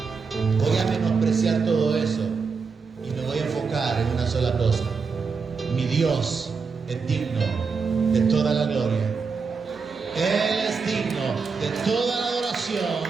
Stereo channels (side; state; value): left; quieter; 5.1 dB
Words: Voy a menospreciar todo eso y me voy a enfocar en una sola cosa. Mi Dios es digno de toda la gloria. Él es digno de toda la adoración.